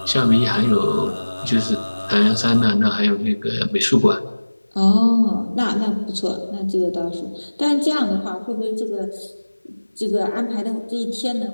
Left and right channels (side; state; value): both; inverted; correlation -1.00